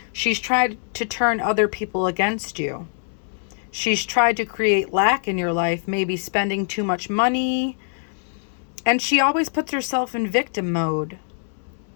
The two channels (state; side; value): silent; right; digital silence